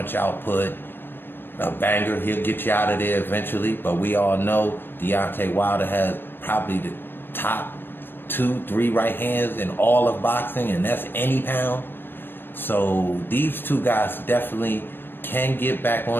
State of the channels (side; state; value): right; late; 0.097 ms